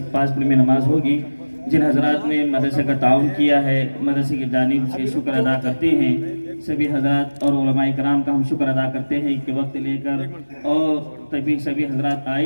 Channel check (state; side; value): inverted; both; correlation -1.00